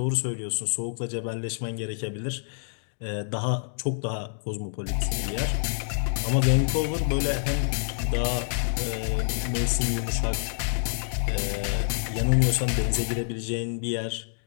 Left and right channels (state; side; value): silent; right; digital silence